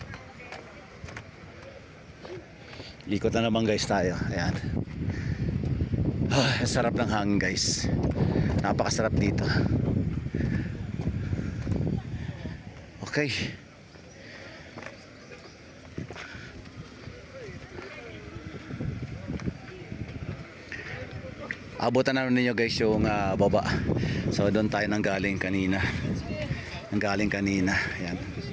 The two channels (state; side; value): identical; both; correlation 1.00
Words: Ikot na naman guys tayo. Ayan. Sarap ng hangin guys. Napakasarap dito. Okay. Abutan na ninyo guys yung baba. So doon tayo nanggaling kanina. Ayan.